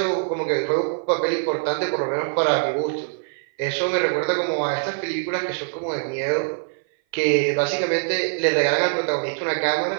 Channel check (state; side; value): silent; left; 57 dB below the other